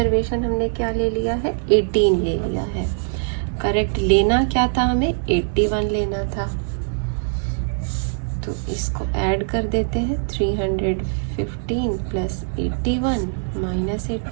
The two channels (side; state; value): left; silent; digital silence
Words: हमने क्या ले लिया है, 18 ले लिया है। करेक्ट लेना क्या था हमें, 81 लेना था, तो इसको ऐड कर देते हैं, 315 प्लस 81 माइनस